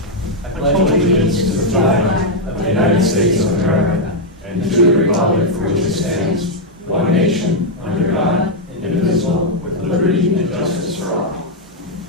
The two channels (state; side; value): normal; both; correlation -0.02